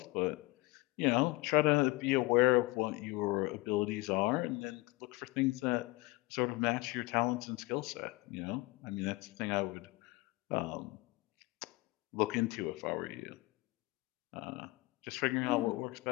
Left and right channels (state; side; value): quieter; right; 22.6 dB